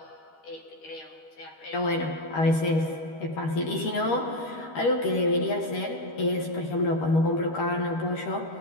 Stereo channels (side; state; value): right; late; 13 ms